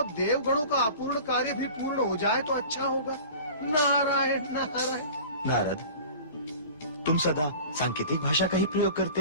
देवगणों का अपूर्ण कार्य भी पूर्ण हो जाए तो अच्छा होगा। नारायण नारायण। नारद, तुम सदा सांकेतिक भाषा का ही प्रयोग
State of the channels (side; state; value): both; inverted; correlation -0.40